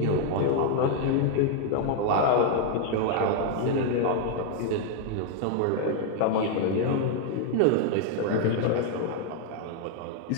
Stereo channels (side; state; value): both; different; correlation 0.00